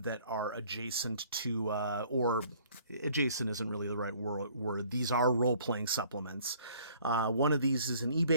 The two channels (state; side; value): inverted; both; correlation -0.57